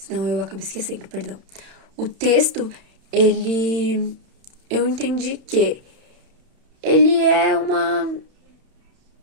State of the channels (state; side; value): late; left; 31 ms